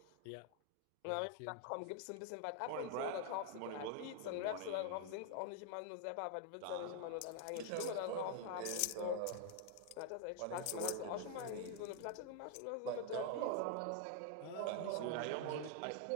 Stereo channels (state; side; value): different; both; correlation 0.00